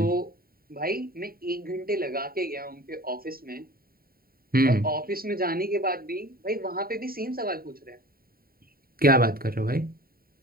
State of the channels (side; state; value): left; late; 0.43 ms